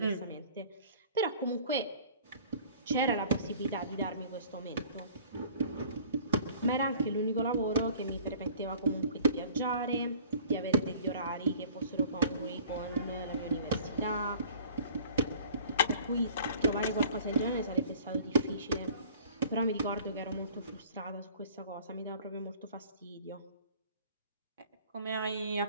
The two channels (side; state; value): both; inverted; correlation -0.50